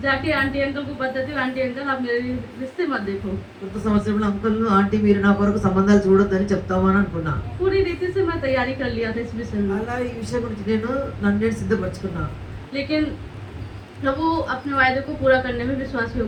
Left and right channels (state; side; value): identical; both; correlation 1.00